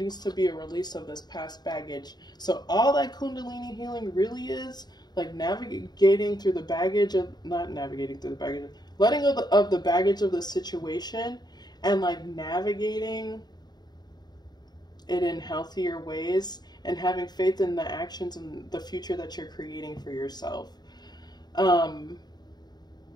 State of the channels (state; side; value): late; right; 0.20 ms